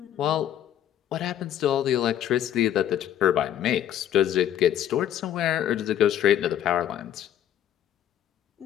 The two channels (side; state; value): right; quieter; 10.9 dB